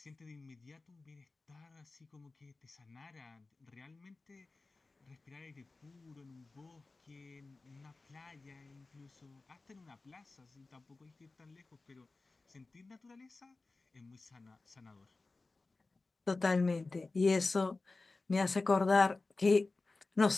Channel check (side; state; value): right; quieter; 3.5 dB